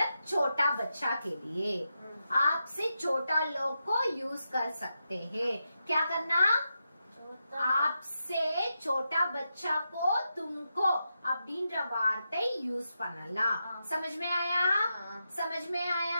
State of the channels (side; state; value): both; inverted; correlation -0.87